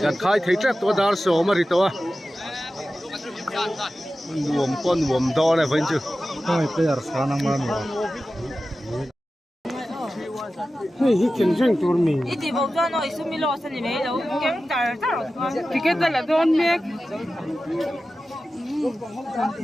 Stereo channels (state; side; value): normal; both; correlation 0.94